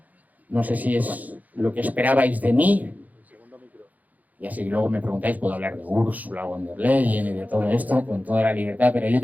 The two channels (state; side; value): late; left; 0.079 ms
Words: No sé si es lo que esperabais de mí. Y así luego me preguntáis, puedo hablar de Ursula von der Leyen y de todo esto con toda la libertad. Pero yo